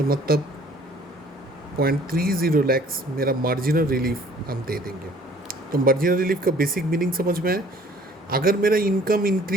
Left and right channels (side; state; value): both; normal; correlation 0.55